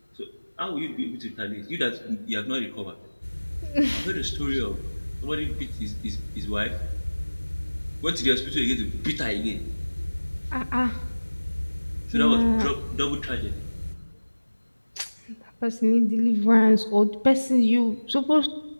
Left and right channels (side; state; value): both; inverted; correlation -1.00